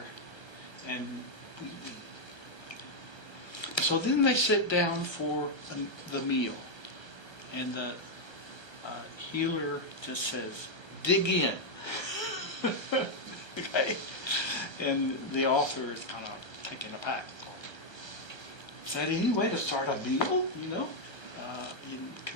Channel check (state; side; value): late; right; 1.3 ms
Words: and we eat. So then they sit down for the meal, and the healer just says, dig in. Okay? And the author is kind of taken aback. Is that any way to start a meal? In